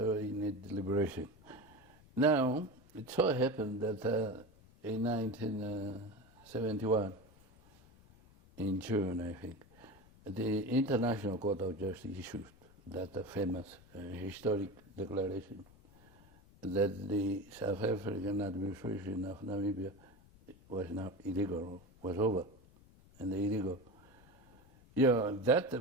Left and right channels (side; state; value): left; noise; rumble, 25 dB below the sound